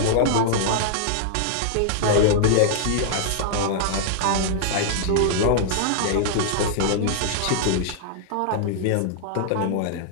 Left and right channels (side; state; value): both; different; correlation -0.01